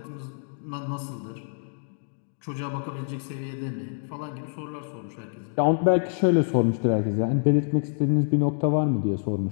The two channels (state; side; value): silent; right; digital silence